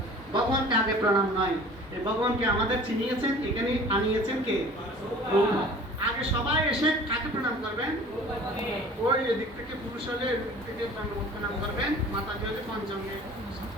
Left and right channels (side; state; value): both; normal; correlation 0.45